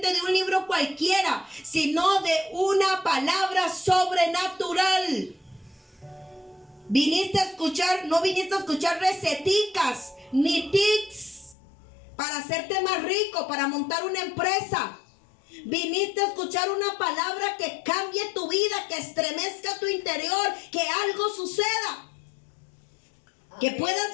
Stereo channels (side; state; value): right; drops out; at 11.6 s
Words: de un libro cualquiera, sino de una palabra sobrenatural. Viniste a escuchar, no viniste a escuchar receticas ni tips para hacerte más rico, para montar una empresa. Viniste a escuchar una palabra que cambie tu vida, que estremezca tu interior, que algo suceda. Que puedas